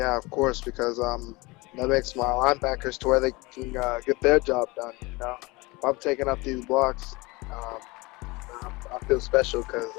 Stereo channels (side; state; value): right; quieter; 23.9 dB